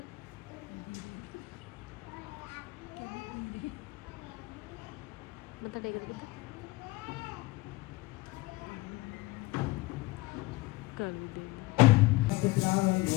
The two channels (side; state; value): right; quieter; 21.0 dB